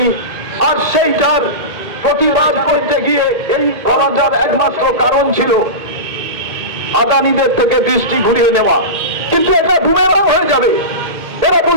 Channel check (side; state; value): left; late; 2.1 ms